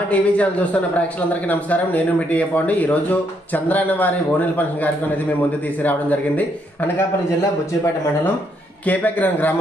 TV channel చూస్తున్న ప్రేక్షకులందరికీ నమస్కారం. నేను మీ టీఏ పాండు. ఈ రోజు చంద్రాన్న వారి ఓనెల్ ఫంక్షన్ కార్యక్రమం అనేది మేము ముందు తీసుకురావడం జరిగింది. అనకాపల్లి జిల్లా బుచ్చిపేట మండలం కేపగ్రం గ్రామ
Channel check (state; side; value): normal; both; correlation 0.74